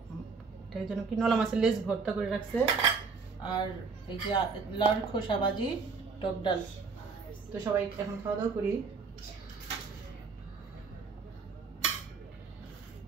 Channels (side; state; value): left; quieter; 4.9 dB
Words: এটার জন্য কি নলা মাছের লেজ ভর্তা করে রাখছে। আর এই যে লাউর খোসা ভাজি, টক ডাল। তো সবাই এখন খাওয়া দাওয়া করি।